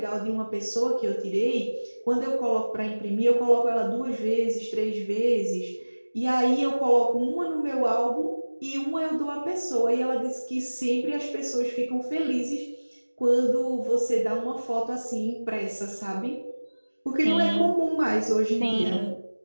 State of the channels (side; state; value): both; inverted; correlation -1.00